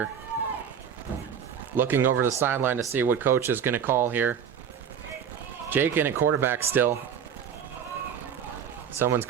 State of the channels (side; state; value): left; quieter; 8.0 dB